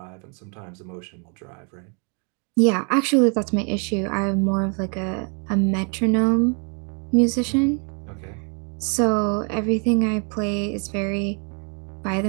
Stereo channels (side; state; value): left; quieter; 36.7 dB